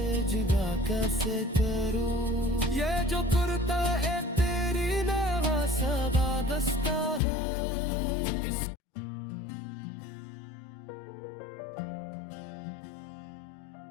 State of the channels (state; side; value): drops out; right; at 7.2 s